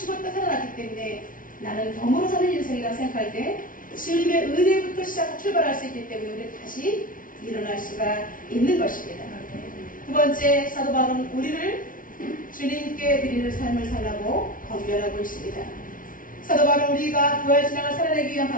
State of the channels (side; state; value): right; late; 0.39 ms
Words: 살아났기 때문에 나는 덤으로 사는 인생이라고 생각할 때 주님의 은혜부터 출발할 수 있기 때문에 우리는 다시 일어날 수가 있는 것입니다. 두 번째, 사도 바울은 우리를 주님께 드리는 삶을 살라고 권면하고 있습니다. 사도 바울은 우리가 부활 신앙을 살아내기 위한